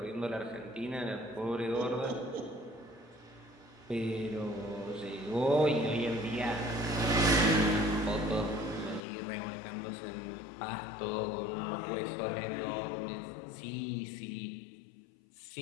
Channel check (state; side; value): drops out; right; at 9.0 s